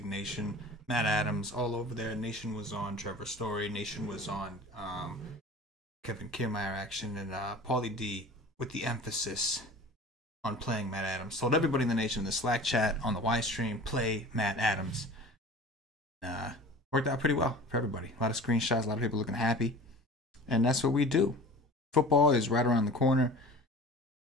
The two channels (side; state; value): both; normal; correlation 0.40